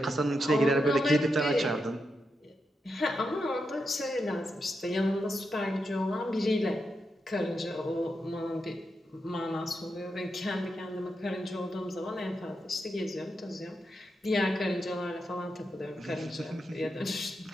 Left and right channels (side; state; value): both; normal; correlation 0.86